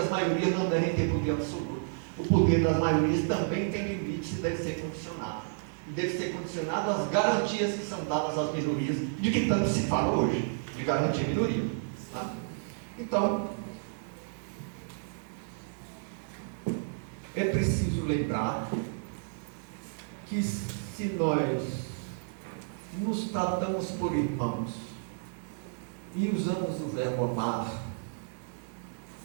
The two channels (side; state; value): left; silent; digital silence